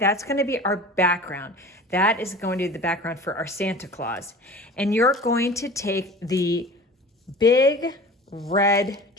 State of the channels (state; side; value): normal; both; correlation 0.39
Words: gonna be our background. That is going to be the background for our Santa Claus. And you're going to take the big red